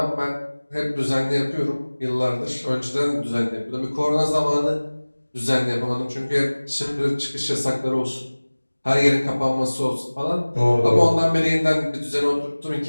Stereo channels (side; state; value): both; inverted; correlation -1.00